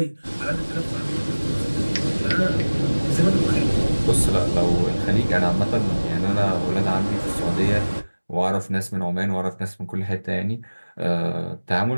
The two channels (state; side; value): inverted; both; correlation -1.00